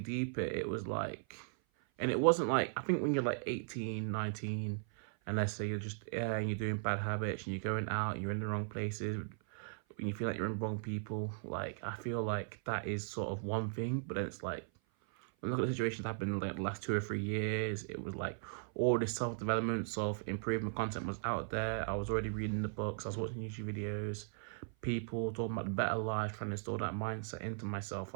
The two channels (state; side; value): silent; left; 53 dB below the other